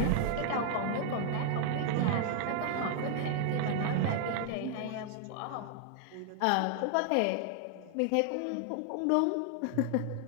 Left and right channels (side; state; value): both; different; correlation 0.00